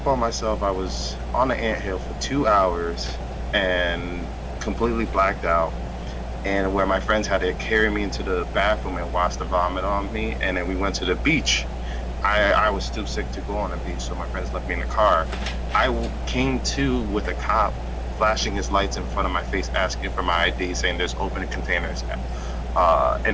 on myself. I was on the anthill for 2 hours and completely blacked out. And where my friends had to carry me into the bathroom and wash the vomit on me, and then we went to the beach. I was too sick to go on the beach, so my friends left me in the car. I came to with a cop flashing his lights in front of my face, asking for my ID, saying there's open containers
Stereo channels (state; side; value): identical; both; correlation 1.00